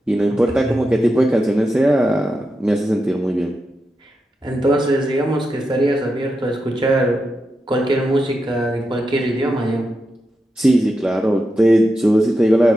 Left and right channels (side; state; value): both; normal; correlation 0.88